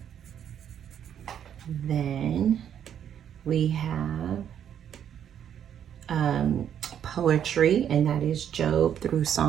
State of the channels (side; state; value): left; quieter; 9.3 dB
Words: Then we have poetry, and that is Job through